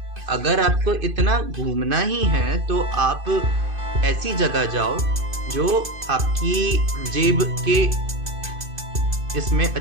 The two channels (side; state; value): left; late; 2.5 ms